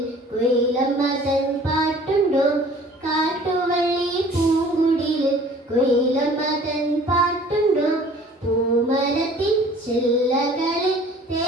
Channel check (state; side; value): normal; both; correlation 0.50